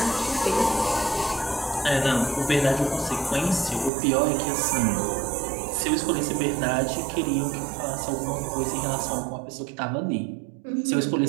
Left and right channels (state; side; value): drops out; left; at 3.9 s